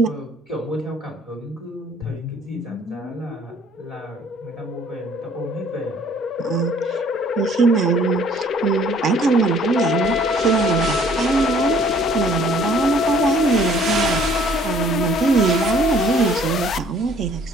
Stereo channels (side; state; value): both; normal; correlation 0.58